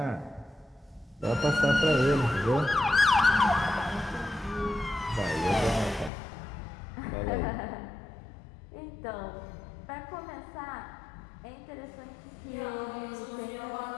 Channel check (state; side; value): drops out; right; at 6.1 s